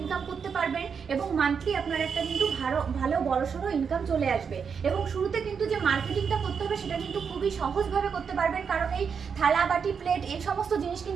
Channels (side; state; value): left; quieter; 6.4 dB